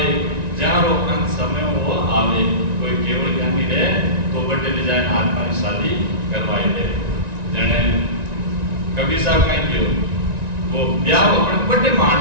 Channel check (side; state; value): left; late; 1.9 ms